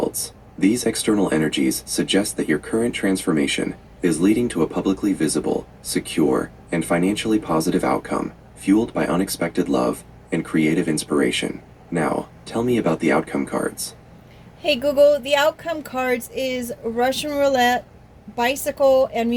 These external energies suggest that your current transformation is leading to a publicly visible, secure, and financially positive outcome, fueled by unexpected love and creative inspiration. Now, tell me about the outcome cards. Hey Google, the outcome cards is Russian roulette, bicycle, and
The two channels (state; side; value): identical; both; correlation 1.00